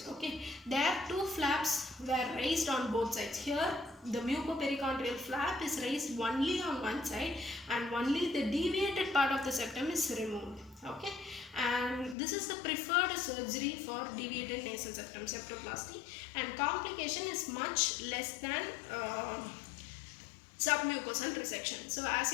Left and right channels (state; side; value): drops out; right; at 12.2 s